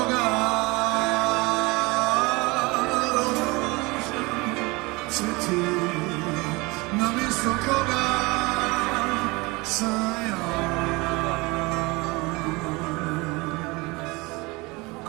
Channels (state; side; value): quieter; left; 24.6 dB